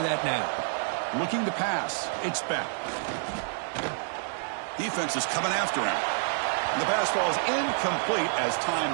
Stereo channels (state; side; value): silent; left; 56 dB below the other